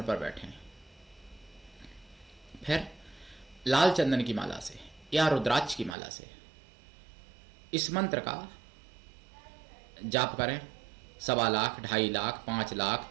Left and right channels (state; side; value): drops out; left; at 6.0 s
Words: पर बैठें। फिर लाल चंदन की माला से या रुद्राक्ष की माला से इस मंत्र का जाप करें। 1.25 लाख, 2.5 लाख, 5 लाख